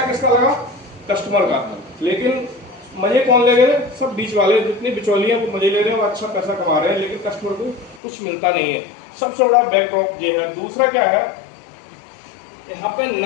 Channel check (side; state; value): right; drops out; at 8.0 s